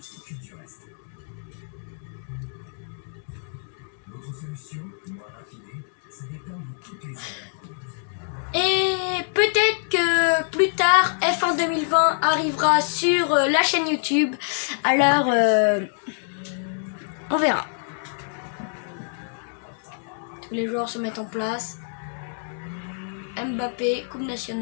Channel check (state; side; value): silent; right; digital silence